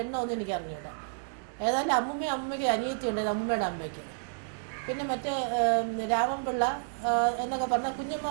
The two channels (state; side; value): silent; left; digital silence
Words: എണ്ണമൊന്നും എനിക്ക് അറിഞ്ഞൂടാ. ഏതായാലും അമ്മൂമ്മയ്ക്ക് അനിയത്തി ഉണ്ടായിരുന്നു, അമ്മൂമ്മയുടെ അമ്മയ്ക്ക്. പിന്നെ മറ്റേ രാമൻപിള്ള എന്നൊക്കെ പറഞ്ഞാൽ കുഞ്ഞമ്മ